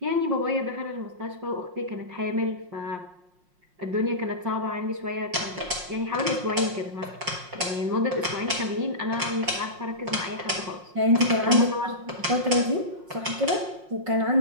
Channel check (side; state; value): left; late; 5.6 ms